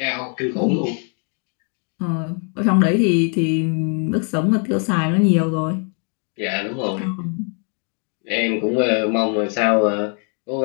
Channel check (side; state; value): right; quieter; 39.7 dB